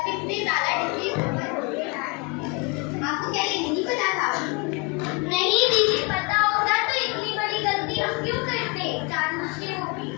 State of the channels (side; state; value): right; quieter; 29.1 dB